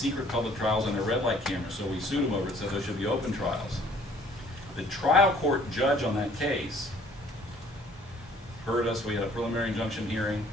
public trials on their red light cameras, so we sued them over it, said there should be open trials. The trial court judge on that case heard us. We had a preliminary injunction hearing,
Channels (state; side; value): normal; both; correlation 0.57